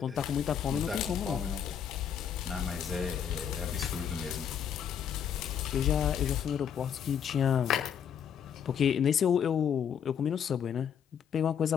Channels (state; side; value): quieter; right; 8.3 dB